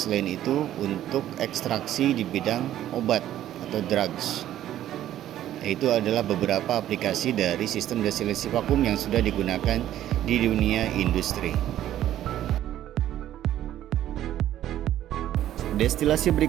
itu untuk ekstraksi di bidang obat atau drugs. Itu adalah beberapa aplikasi dari sistem destilasi vakum yang sudah digunakan di dunia industri. Destilasi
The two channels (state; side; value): quieter; left; 12.4 dB